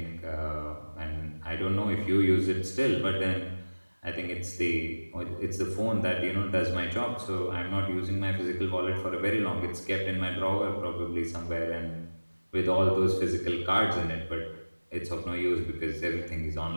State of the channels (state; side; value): inverted; both; correlation -1.00